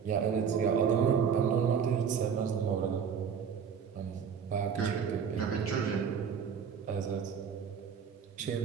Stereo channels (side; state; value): left; quieter; 7.0 dB